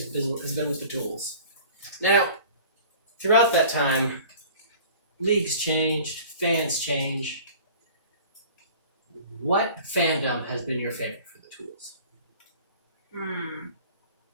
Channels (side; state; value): both; inverted; correlation -0.45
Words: has been with the Tools. Now, throughout that time, leagues changed, fans changed. What fandom has been your favorite for the Tools?